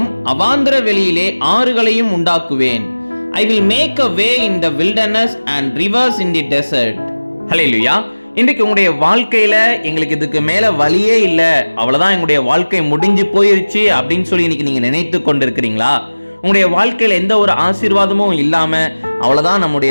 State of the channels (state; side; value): inverted; both; correlation -1.00